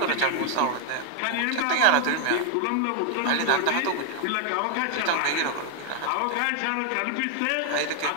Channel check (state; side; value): different; both; correlation 0.00